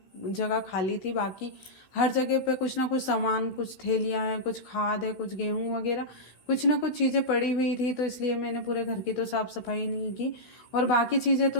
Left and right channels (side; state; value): right; late; 16 ms